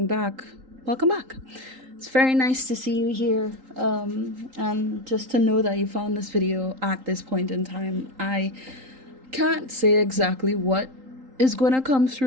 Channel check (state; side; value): late; left; 3.8 ms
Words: back, welcome back. It's very nice to see you here, and just to know that you found this video at this point in time. I can't say exactly what is going to come